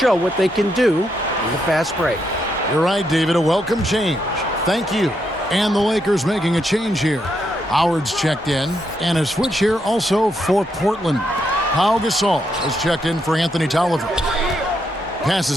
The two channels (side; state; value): both; normal; correlation 0.79